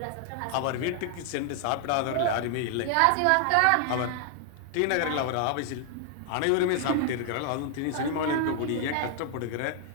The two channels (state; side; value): different; both; correlation 0.00